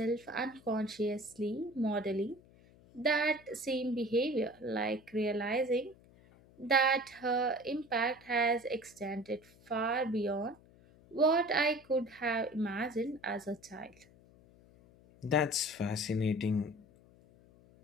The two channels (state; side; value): noise; left; hum, 26 dB below the sound